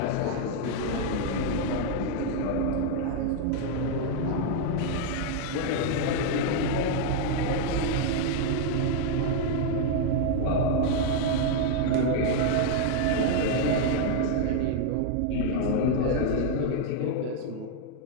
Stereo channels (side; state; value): both; different; correlation 0.00